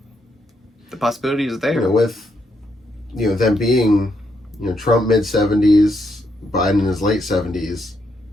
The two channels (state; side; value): normal; both; correlation 0.78